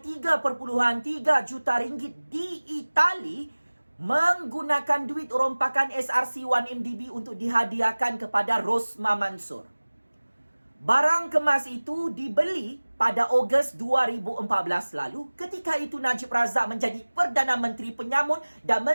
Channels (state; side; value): inverted; both; correlation -1.00